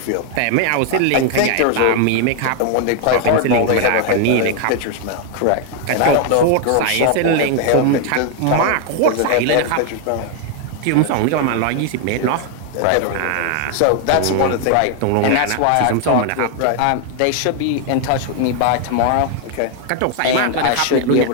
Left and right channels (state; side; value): different; both; correlation 0.00